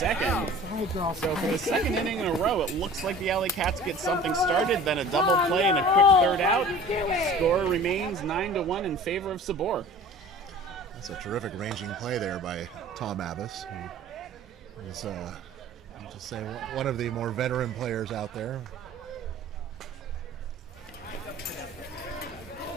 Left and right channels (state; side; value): normal; both; correlation 0.44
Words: So for the second inning in a row, it looks like the Alley Cats get something started, then a double play and a quick third out. Score remains 9-1 in favor of Sabor. That's a terrific ranging play there by Tom Abbas, who is, I'll just say, one of the more veteran players out there.